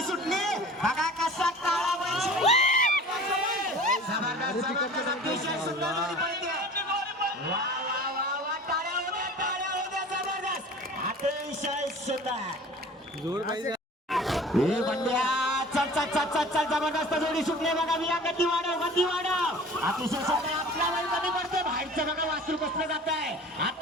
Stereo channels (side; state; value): both; normal; correlation 0.43